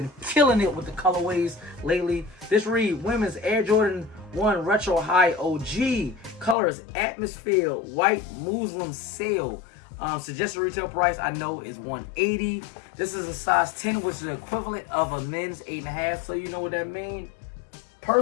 killing it with the colorways lately. This read women's Air Jordan 1 Retro High OG. Color is Atmosphere White Muslim Sail. Suggested retail price I know is $180. This is a size 10, which is the equivalent of a men's 8.5. So you know what that means.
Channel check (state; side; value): drops out; right; at 6.6 s